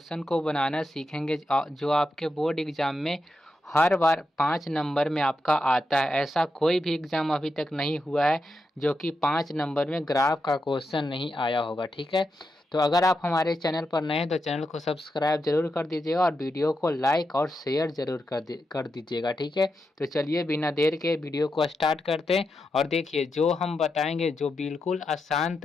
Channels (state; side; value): normal; both; correlation 0.86